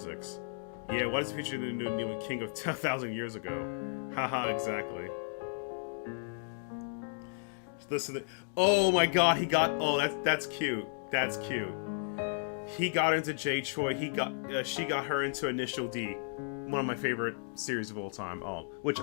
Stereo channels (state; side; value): silent; right; digital silence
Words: Yeah, why does the future new king of 10,000 years ago? Haha, exactly. Listen to, oh my god, he got, oh, that's cute. That's cute. He got into Jay Choi. She got her into Initial D, one of my favorite series of all time. Oh, which